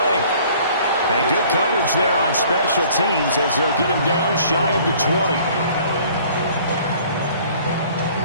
And good coverage there on special teams as they'll get him down shy of the 20.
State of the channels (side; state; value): both; inverted; correlation -0.53